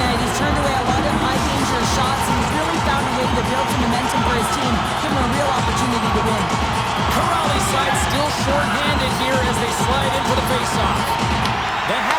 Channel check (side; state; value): left; noise; hum, 22 dB below the sound